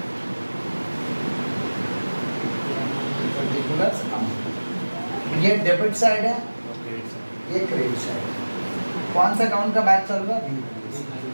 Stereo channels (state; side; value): inverted; both; correlation -1.00